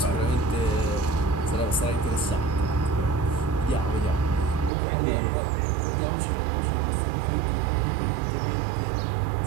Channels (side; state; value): left; drops out; at 4.7 s